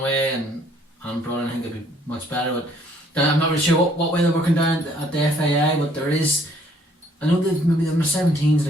and brought in. I think it'd be much better, but I'm not really sure what way they're working down at the FAI, but there is, I know they've maybe the 17's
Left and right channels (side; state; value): both; normal; correlation 0.63